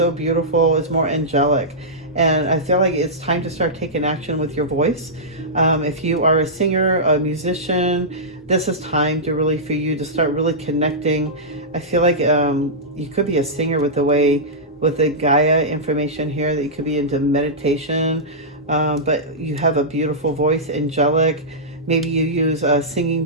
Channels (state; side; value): normal; both; correlation -0.14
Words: beautiful, it's more angelic. And I feel like it's time to start taking action with your voice. If you are a singer, a musician, this is time to really, for you to start really connecting. I feel like you could be a singer with the Gaia information here, that you could be into meditation, but you have a beautiful voice, angelic. Maybe you use singing